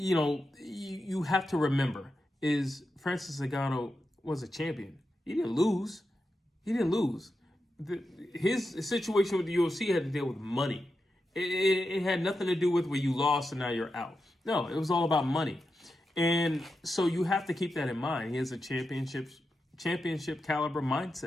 have to remember is Francis Ngannou was a champion. He didn't lose. His situation with the UFC had to deal with money. It had nothing to do with where you lost and now you're out. No, it was all about money. And so you have to keep that in mind. He has a championship caliber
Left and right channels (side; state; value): both; normal; correlation 0.89